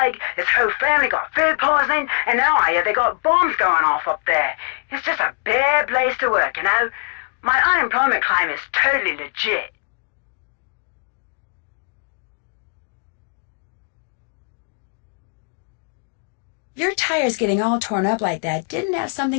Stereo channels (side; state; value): right; quieter; 37.0 dB